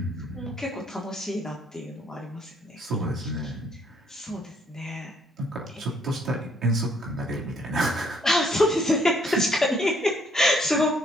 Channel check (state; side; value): normal; both; correlation 0.66